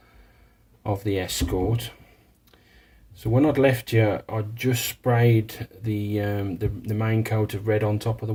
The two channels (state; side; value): identical; both; correlation 1.00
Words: of the Escort. So when I'd left you, I'd just sprayed the main coat of red on top of the